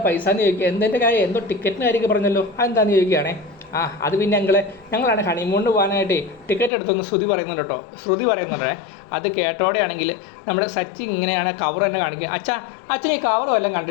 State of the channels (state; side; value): drops out; right; at 6.7 s